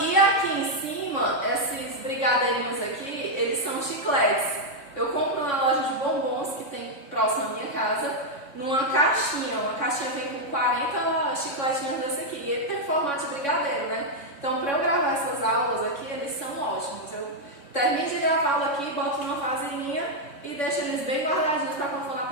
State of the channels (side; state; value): right; late; 3.6 ms